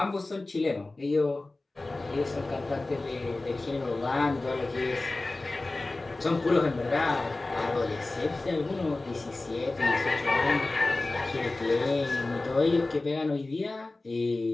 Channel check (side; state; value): right; quieter; 3.1 dB